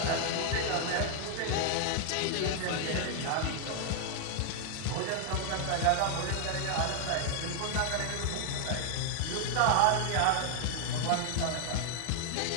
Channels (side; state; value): both; different; correlation 0.00